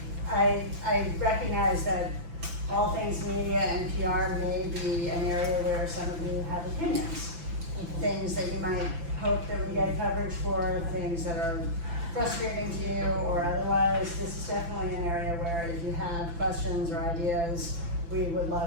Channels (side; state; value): left; late; 5.9 ms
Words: I recognize that all things media and PR may be an area where some of you have opinions. Things that you might hope that we get coverage for, things that are frustrating to you or otherwise. This is definitely an area where if you have questions or ideas, we would